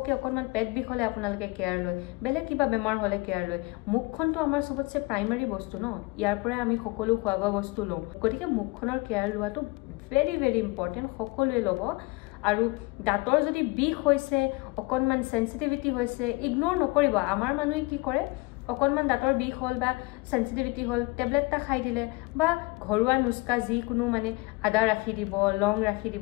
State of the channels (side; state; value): right; quieter; 24.7 dB